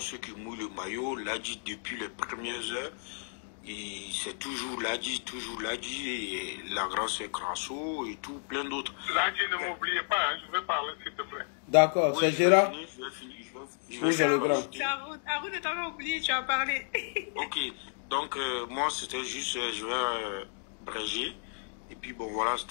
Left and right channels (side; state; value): right; silent; 56 dB below the other